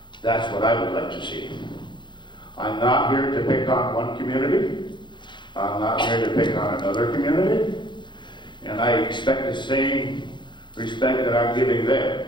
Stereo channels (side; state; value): right; late; 0.23 ms